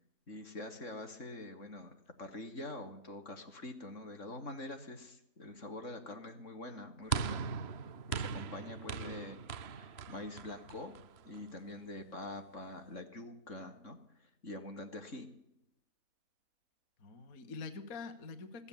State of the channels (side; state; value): right; late; 3.1 ms